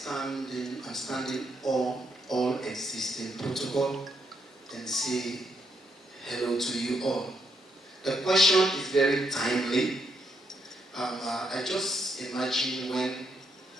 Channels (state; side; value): normal; both; correlation 0.77